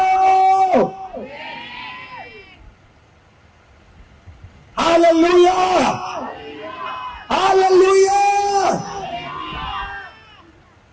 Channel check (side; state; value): both; identical; correlation 1.00